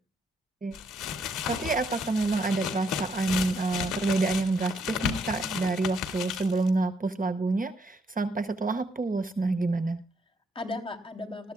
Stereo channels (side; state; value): both; normal; correlation 0.73